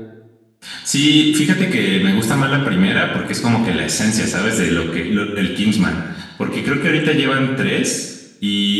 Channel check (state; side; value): identical; both; correlation 1.00